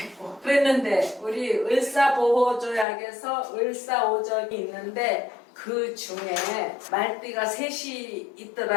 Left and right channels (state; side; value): drops out; right; at 2.9 s